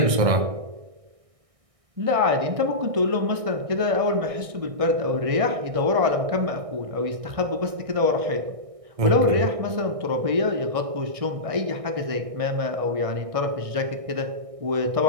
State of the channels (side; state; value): left; late; 1.6 ms